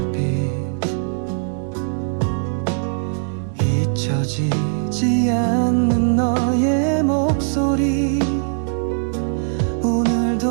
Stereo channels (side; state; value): left; silent; digital silence